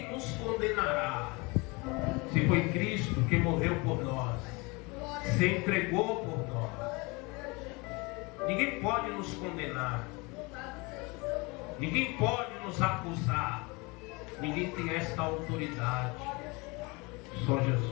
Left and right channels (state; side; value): quieter; right; 26.8 dB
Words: nos condenará? Se foi Cristo que morreu por nós, se entregou por nós. Ninguém pode nos condenar, ninguém pode nos acusar, ninguém tem esta autoridade. Só